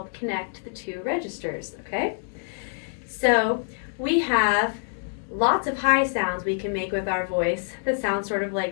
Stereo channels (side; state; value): right; silent; 61 dB below the other